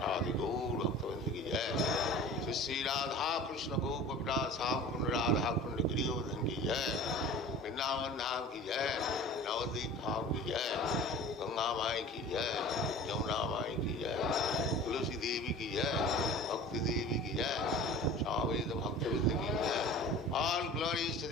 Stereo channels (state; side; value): normal; both; correlation 0.40